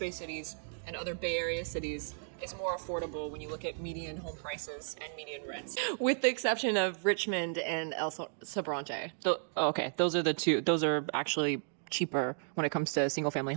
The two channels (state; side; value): silent; left; digital silence